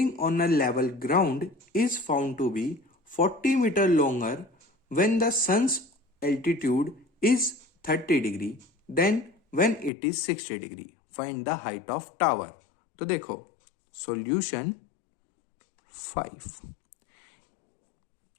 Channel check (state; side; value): drops out; right; at 9.9 s